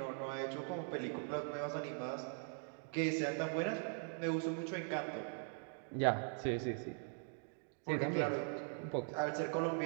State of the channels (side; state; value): left; silent; 50 dB below the other